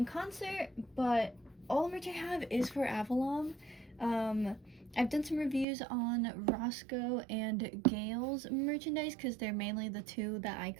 concert, but all the merch I have is for Avallum. I've done some reviews on Roscoe and Gale's merchandise because they're mainly the two that I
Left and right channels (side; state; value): left; drops out; at 5.7 s